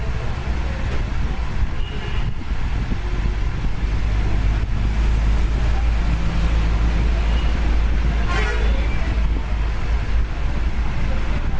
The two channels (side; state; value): both; identical; correlation 1.00